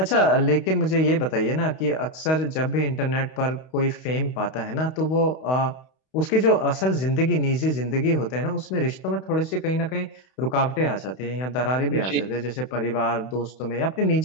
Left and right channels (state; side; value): late; right; 32 ms